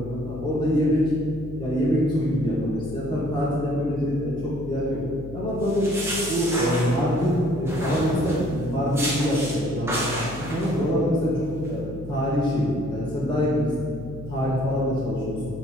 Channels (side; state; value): left; noise; hum, 12 dB below the sound